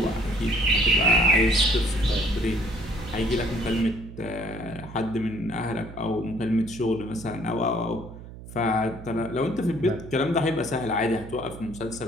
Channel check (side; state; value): right; noise; hum, 14 dB below the sound